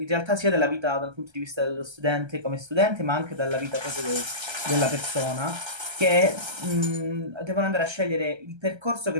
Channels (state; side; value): late; left; 1.3 ms